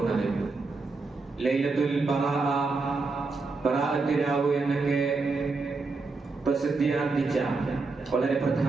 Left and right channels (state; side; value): quieter; left; 3.9 dB